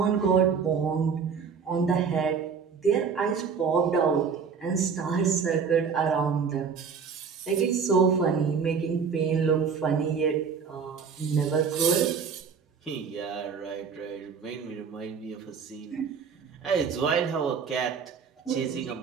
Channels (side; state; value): left; quieter; 6.1 dB